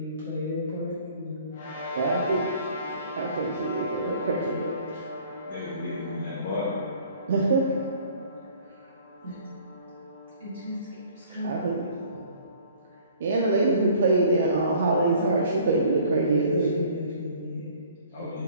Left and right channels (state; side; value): inverted; both; correlation -0.53